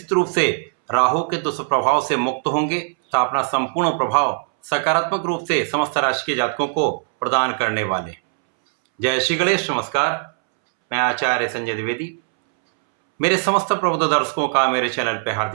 रूप से राहु के दुष्प्रभाव से मुक्त होंगे तो अपना संपूर्ण प्रभाव सकारात्मक रूप से समस्त राशि के जातकों को प्रदान करने वाले। जय श्री गणेश। नमस्कार, मैं आचार्य संजय द्विवेदी। मेरे समस्त प्रबुद्ध दर्शकों का मेरे चैनल पर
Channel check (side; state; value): left; silent; 66 dB below the other